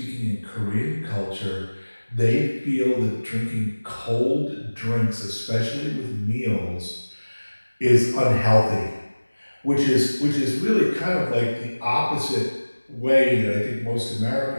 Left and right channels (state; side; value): inverted; both; correlation -1.00